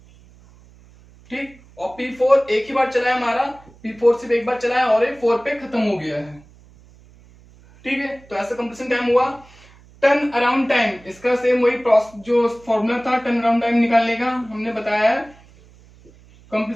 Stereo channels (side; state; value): right; noise; hum, 26 dB below the sound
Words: ठीक, और P4 एक ही बार चला है हमारा, P4 सिर्फ एक बार चला है और ये 4 पे खत्म हो गया है। ठीक है, तो ऐसा कंप्लीशन टाइम हुआ। टर्न अराउंड टाइम, इसका सेम वही जो फॉर्मूला था टर्न अराउंड टाइम निकालने का, हमने बताया है